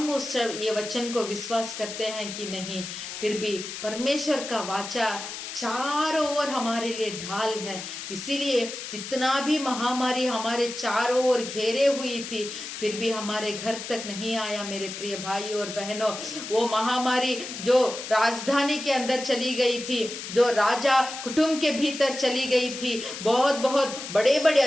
उस ये वचन को विश्वास करते हैं कि नहीं, फिर भी परमेश्वर का वाचा चारों ओर हमारे लिए ढाल है। इसीलिए जितना भी महामारी हमारे चारों ओर घेरे हुई थी, फिर भी हमारे घर तक नहीं आया। मेरे प्रिय भाइयों और बहनों, वो महामारी जो राजधानी के अंदर चली गई थी, जो राजा कुटुंब के भीतर चली गई थी, बहुत बहुत बड़े बड़े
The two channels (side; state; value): left; noise; hiss, 9 dB below the sound